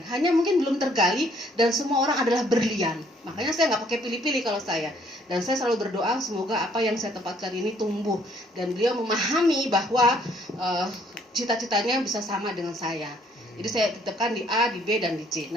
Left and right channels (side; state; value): both; normal; correlation 0.64